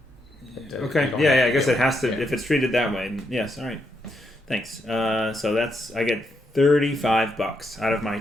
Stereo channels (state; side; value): normal; both; correlation 0.79